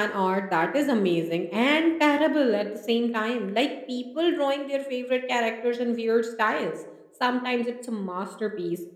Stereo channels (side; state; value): both; identical; correlation 1.00